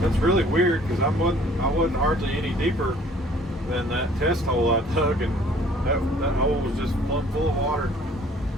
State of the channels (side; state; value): both; normal; correlation 0.56